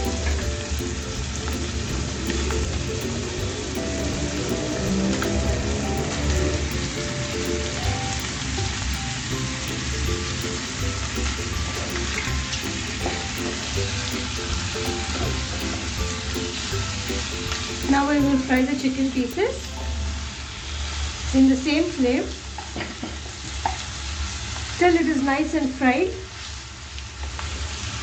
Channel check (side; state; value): both; identical; correlation 1.00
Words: Now we will fry the chicken pieces in the same flame till it is nice and fried.